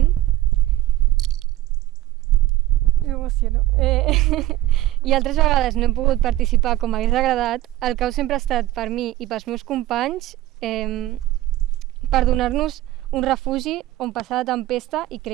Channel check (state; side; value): quieter; left; 15.4 dB